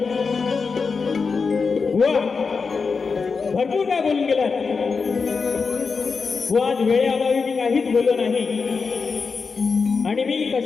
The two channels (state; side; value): quieter; right; 5.0 dB